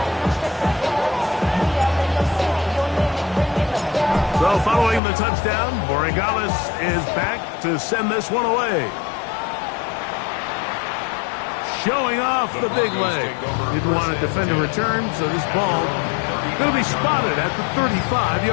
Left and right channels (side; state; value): right; drops out; at 5.0 s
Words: So following the touchdown, Borregales is back to send this one away. Showing off the big leg. Didn't want to defend a return, so this ball going to be spotted at the